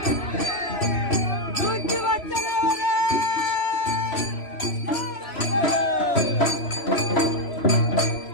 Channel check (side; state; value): right; late; 3.0 ms